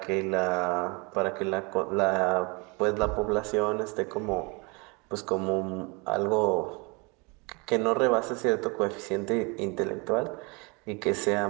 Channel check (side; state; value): left; quieter; 29.3 dB